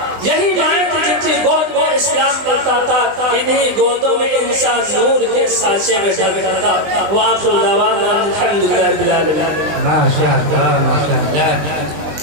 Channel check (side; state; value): left; late; 20 ms